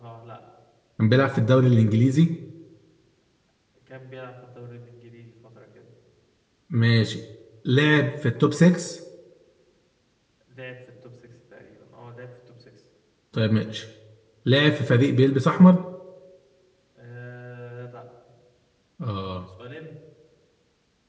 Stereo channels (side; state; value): both; identical; correlation 1.00